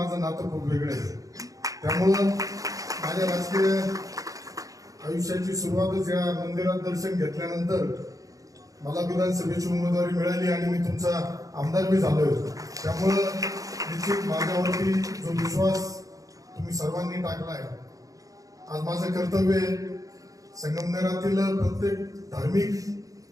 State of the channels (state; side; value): late; left; 0.17 ms